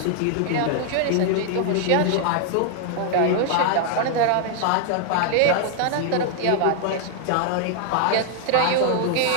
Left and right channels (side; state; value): both; different; correlation 0.00